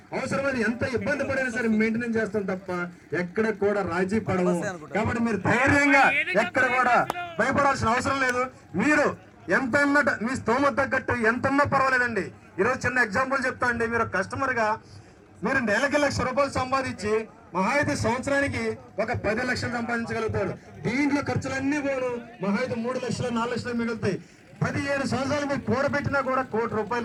అవసరమైన ఎంత ఇబ్బంది పడైనా సరే మెయింటెనెన్స్ చేస్తాం తప్ప ఎక్కడ కూడా రాజీ పడము. కాబట్టి మీరు ధైర్యంగా ఎక్కడ కూడా భయపడాల్సిన అవసరం లేదు. మీరు ఎంత ఉన్నట్టు మీ స్తోమత తగ్గట్టు ఎంత ఉన్నా పర్వాలేదండి. ఈరోజు చిన్న ఎగ్జాంపుల్ చెప్తా అండి. మీరు కస్టమర్గా మీరు నెలకి ₹1,00,000 సంపాదించి మహా అయితే సంవత్సరానికి ఒక 10 లక్షలు సంపాదించగలుగుతాడు. దీంట్లో ఖర్చులన్నీ పోను మహా అయితే 3 లక్షలు 4 లక్షలు మిగులుతాయి. 17 సంవత్సరాలు మీరు కూడబెట్టినా కూడా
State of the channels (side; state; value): both; identical; correlation 1.00